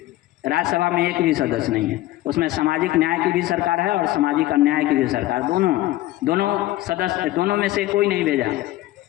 राज्यसभा में एक भी सदस्य नहीं है। उसमें सामाजिक न्याय की भी सरकार है और सामाजिक अन्याय की भी सरकार, दोनों सदस्य, दोनों में से कोई नहीं भेजा,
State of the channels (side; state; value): right; quieter; 16.3 dB